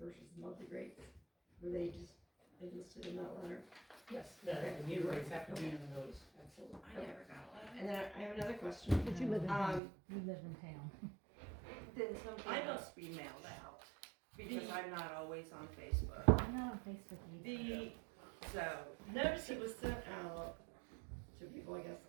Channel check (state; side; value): drops out; left; at 9.8 s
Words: the monthly rates, were they just listed in that letter? Yes, the meter rates have to be in the notice, absolutely. I never got a letter. And then I have another question. But you live in town. You live in town. Then something I don't- must be mailed out, because I'm not always on Facebook. I'm not on Facebook either. So, Notice it was sent out to people, I guess,